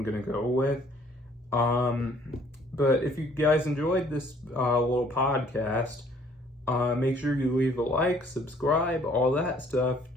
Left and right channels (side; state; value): both; normal; correlation 0.59